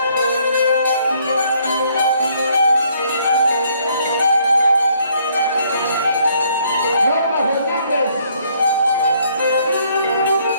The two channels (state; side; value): inverted; both; correlation -0.66